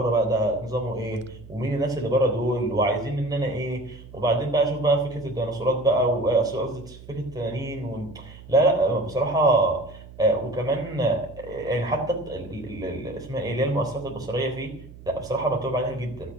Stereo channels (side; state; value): right; noise; hum, 18 dB below the sound